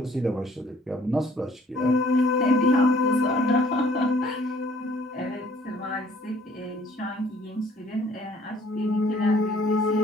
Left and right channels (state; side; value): normal; both; correlation 0.58